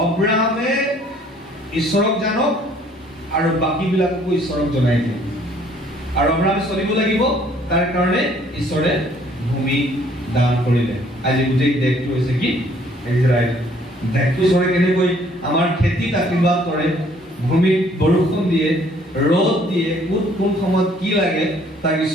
আব্ৰাহামে ঈশ্বৰক জানক আৰু বাকীবিলাককো ঈশ্বৰক জনাই দিয়ে আৰু আব্ৰাহামে চলিব লাগিব তাৰ কাৰণে ঈশ্বৰে ভূমি দান কৰিলে আজি গোটেই দেশটো হৈছে কি ইজৰাইল দেশটো ঈশ্বৰে কেনেকৈ আমাৰ খেতিত আশীৰ্বাদ কৰে ভূমিত বৰষুণ দিয়ে ৰ'দ দিয়ে কোন সময়ত কি লাগে তাক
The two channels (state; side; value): normal; both; correlation 0.60